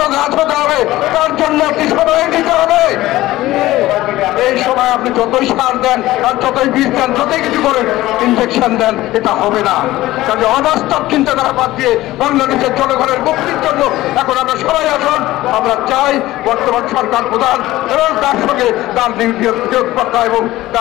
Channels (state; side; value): quieter; right; 16.7 dB